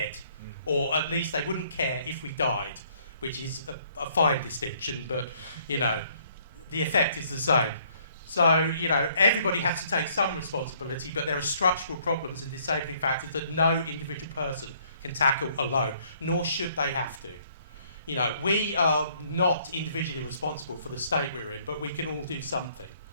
Or at least they wouldn't care if we died, which is a fine distinction, but, the effect is the same. So, everybody has to take some responsibility, but there are structural problems and disabling factors that no individual person can tackle alone, nor should they have to. We are not individually responsible for the state we're in, but we can all do something.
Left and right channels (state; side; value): inverted; both; correlation -0.63